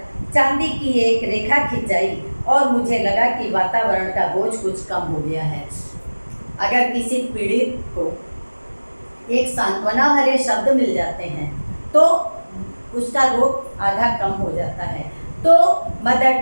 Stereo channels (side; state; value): both; inverted; correlation -1.00